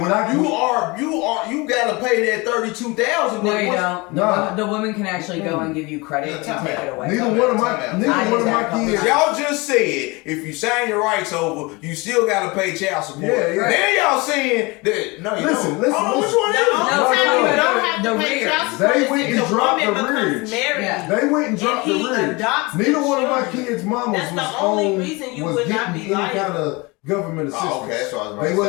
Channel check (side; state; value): right; quieter; 25.5 dB